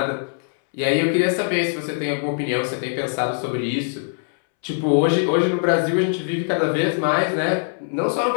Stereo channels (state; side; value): silent; right; 64 dB below the other